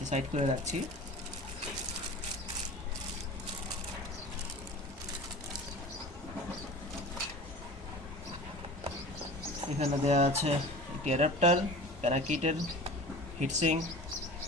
সাইড করে রাখছি। এখানে দেওয়া আছে একটি অ্যাডাপ্টার, প্যারাকিটের হিটসিং,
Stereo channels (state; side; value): normal; both; correlation 0.37